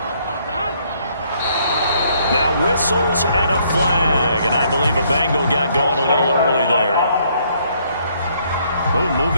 Now whistles and a flag, and I believe a Bengal got going a little early there. Oh,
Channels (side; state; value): both; inverted; correlation -0.67